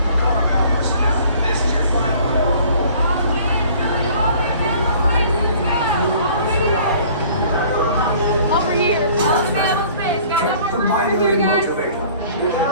Pucara bound personnel, this is your final call. Over here. Check the binary motivator.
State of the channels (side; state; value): both; inverted; correlation -0.52